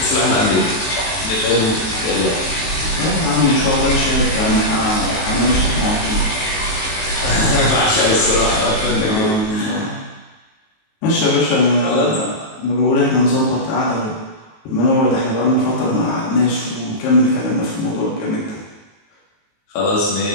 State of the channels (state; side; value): late; right; 19 ms